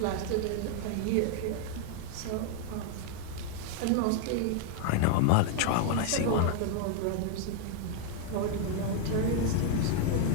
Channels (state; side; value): different; both; correlation 0.00